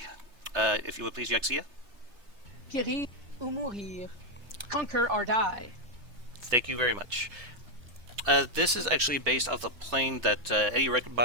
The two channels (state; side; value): late; left; 3.3 ms